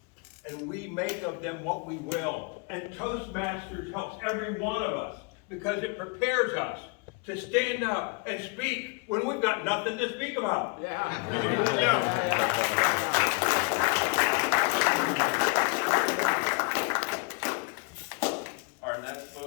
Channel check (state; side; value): quieter; right; 32.8 dB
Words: and we make of them what we will. And Toastmasters helps every one of us because it prepares us to stand up and speak when we've got nothing to speak about. Our next